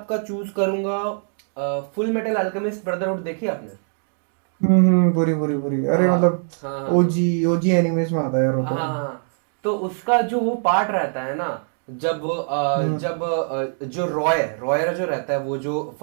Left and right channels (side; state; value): left; silent; 64 dB below the other